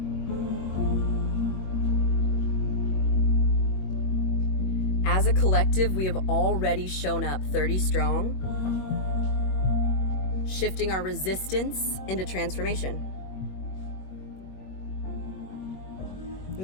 As a collective, we have already shown up 30 strong, shifting our resistance into transformation.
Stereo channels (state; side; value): late; right; 22 ms